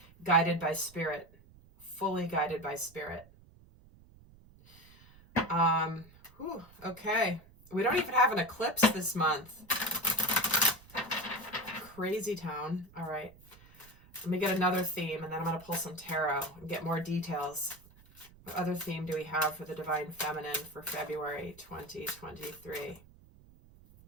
Guided by spirit, fully guided by spirit. Okay. We don't even have an eclipse this month. Crazy town. All right. Let me get another theme, and then I'm going to pull some tarot and get more details. What other theme do we have for the Divine Feminine for February 2023?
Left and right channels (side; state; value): right; noise; rumble, 24 dB below the sound